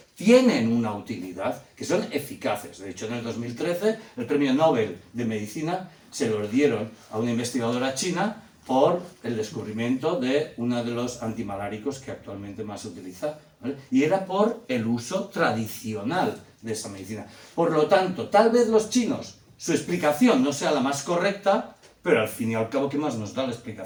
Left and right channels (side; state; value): both; identical; correlation 1.00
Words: tienen una utilidad, que son eficaces. De hecho, en el 2013 el premio Nobel de Medicina se lo dieron a una investigadora china por el descubrimiento de uno de los antimaláricos que actualmente más se utiliza, ¿vale? Y era por el uso tradicional de esa medicina. Por lo tanto, tal vez los chinos, su explicación no sea la más correcta, pero al fin y al cabo, ¿qué más nos da la